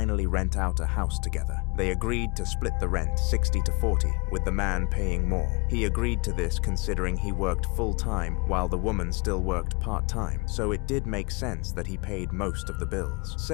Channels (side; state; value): right; quieter; 29.6 dB